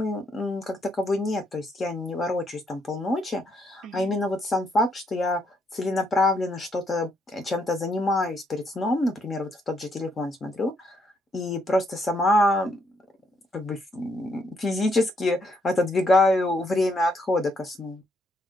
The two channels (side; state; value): both; normal; correlation 0.73